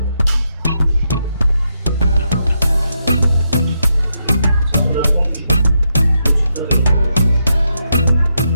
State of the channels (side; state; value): both; inverted; correlation -0.82